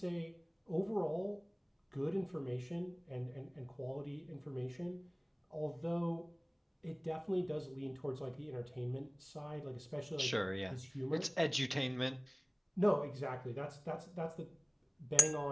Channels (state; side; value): identical; both; correlation 1.00